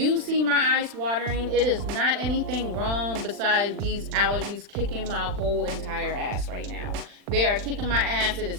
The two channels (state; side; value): late; left; 40 ms